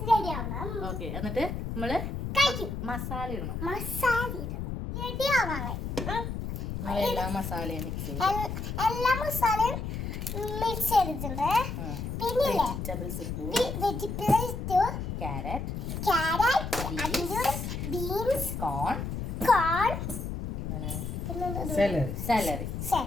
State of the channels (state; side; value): noise; left; rumble, 4 dB below the sound